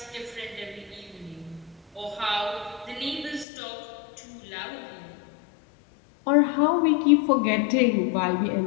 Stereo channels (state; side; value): drops out; right; at 3.5 s